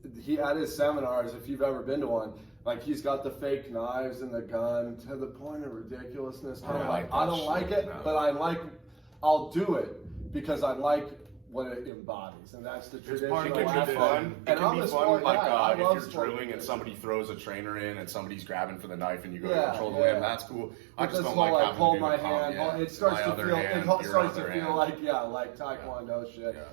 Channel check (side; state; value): left; drops out; at 11.9 s